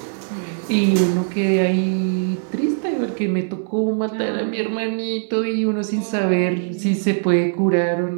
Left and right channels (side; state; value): left; silent; 64 dB below the other